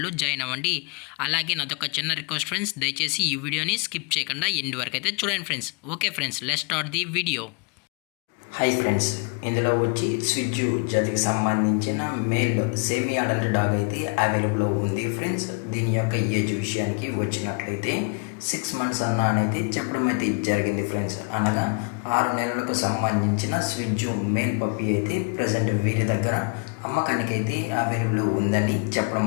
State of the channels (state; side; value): quieter; right; 33.8 dB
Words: జాయిన్ అవ్వండి. అలాగే నాదొక చిన్న రిక్వెస్ట్ ఫ్రెండ్స్, దయచేసి ఈ వీడియోని స్కిప్ చేయకుండా ఎండ్ వరకు అయితే చూడండి friends. Okay friends, let's start the video. Hi friends, ఇందులో వచ్చి స్విజ్జు జాతికి సంబంధించిన మేల్ సెమీ అడల్ట్ డాగ్ అయితే అవైలబుల్లో ఉంది ఫ్రెండ్స్. దీని యొక్క ఏజ్ విషయానికి వచ్చినట్లయితే 6 months అనేది చెప్పడం అయితే జరిగింది ఫ్రెండ్స్. అనగా 6 నెలలకు సంబంధించిన స్విజ్జు మేల్ పప్పి అయితే ప్రజెంట్ వీరి దగ్గర అమ్మకానికి అయితే అవైలబుల్ ఉందని చెప్పడం